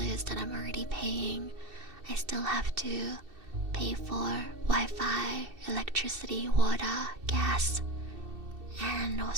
that I'm already paying, I still have to pay for Wi-Fi, electricity, water, gas, and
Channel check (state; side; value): late; left; 2.7 ms